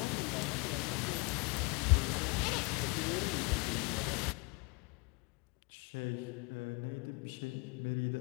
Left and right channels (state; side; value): quieter; right; 30.8 dB